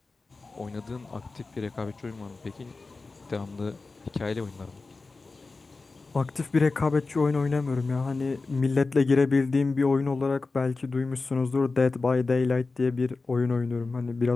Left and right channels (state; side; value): quieter; right; 3.8 dB